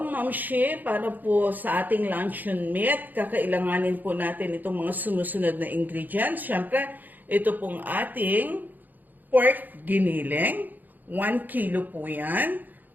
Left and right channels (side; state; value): left; late; 0.085 ms